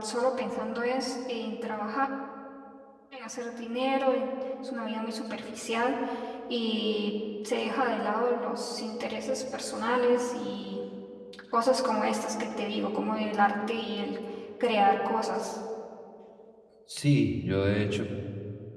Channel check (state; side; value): identical; both; correlation 1.00